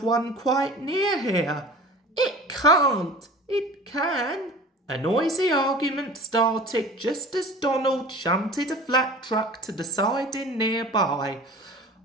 one quite near here. It can't. It can. A noisy argument started just as Donald shunted a flat truck to the siding nearby.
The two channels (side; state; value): both; normal; correlation 0.40